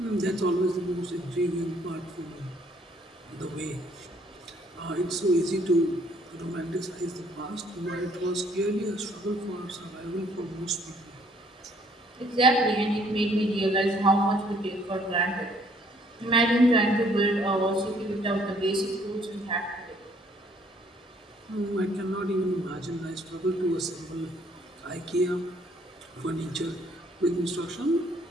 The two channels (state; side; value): normal; both; correlation 0.63